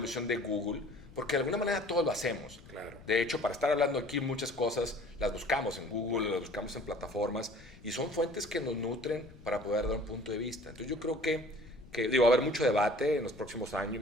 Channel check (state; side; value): noise; left; rumble, 20 dB below the sound